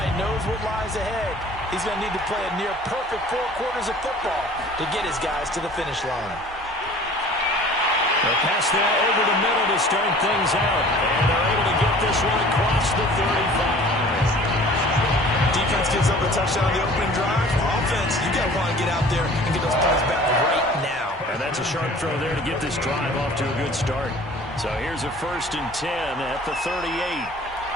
knows what lies ahead. He's going to need to play a near-perfect 4 quarters of football to get his guys to the finish line. They'll pass that over the middle to start things out. And they're able to get this one across the 35. Defense gives up a touchdown on the opening drive. Offense, you got to want to get out there and get those points back right now. And that's a sharp throw there to get this drive off to a good start. So here's a 1st and 10 at the 38.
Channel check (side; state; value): both; normal; correlation 0.47